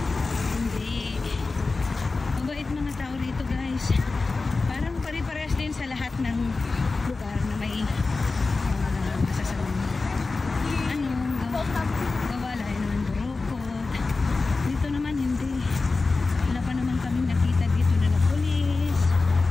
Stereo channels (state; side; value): quieter; right; 3.8 dB